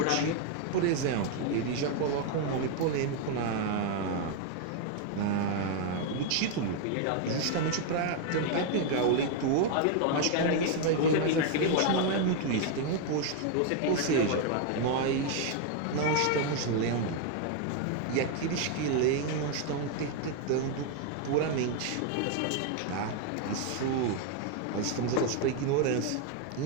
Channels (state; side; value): different; both; correlation 0.00